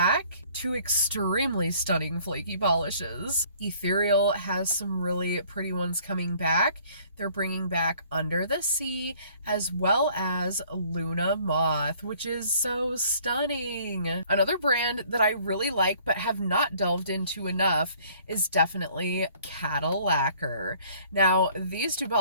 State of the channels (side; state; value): both; inverted; correlation -0.57